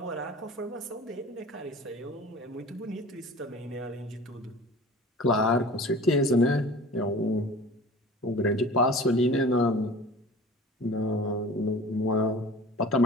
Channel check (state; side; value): normal; both; correlation 0.41